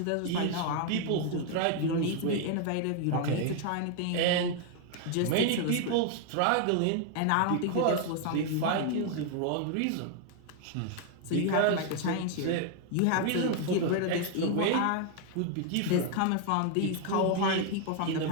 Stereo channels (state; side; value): different; both; correlation 0.00